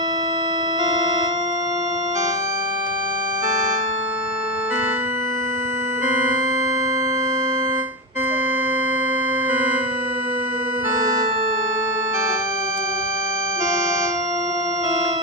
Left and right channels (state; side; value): normal; both; correlation 0.13